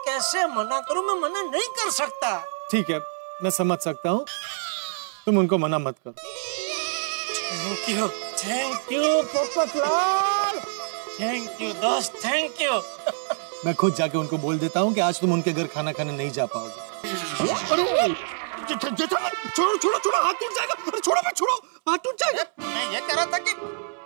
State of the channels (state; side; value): silent; left; 61 dB below the other